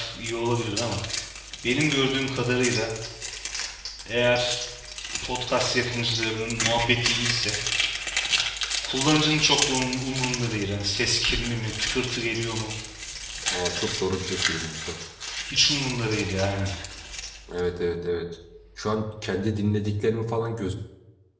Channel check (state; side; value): identical; both; correlation 1.00